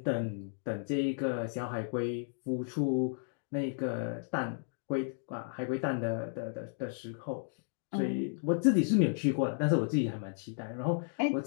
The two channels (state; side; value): silent; right; digital silence